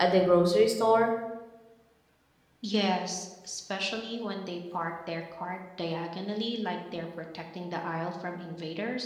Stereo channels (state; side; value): identical; both; correlation 1.00